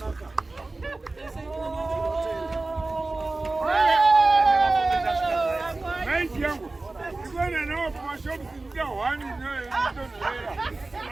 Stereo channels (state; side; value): quieter; left; 3.2 dB